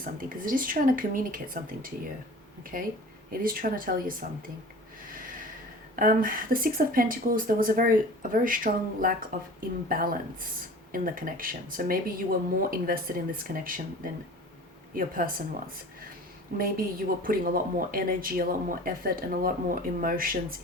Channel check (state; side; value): normal; both; correlation 0.41